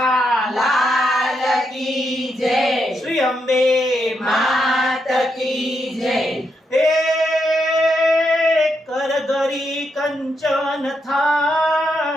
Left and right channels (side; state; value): both; normal; correlation 0.81